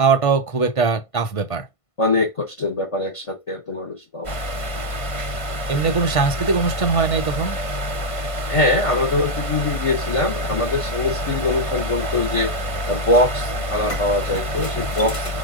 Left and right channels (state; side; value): late; right; 1.5 ms